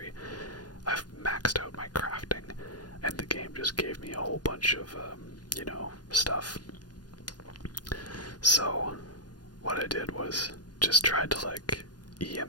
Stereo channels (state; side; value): late; right; 0.69 ms